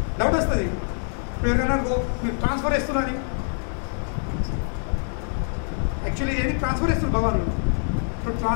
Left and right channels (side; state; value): right; silent; 62 dB below the other